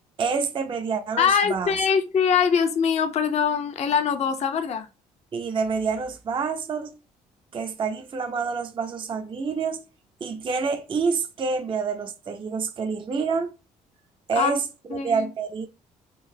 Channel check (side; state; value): both; normal; correlation 0.39